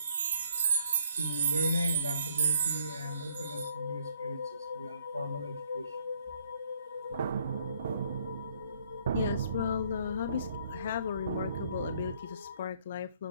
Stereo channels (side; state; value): both; inverted; correlation -0.66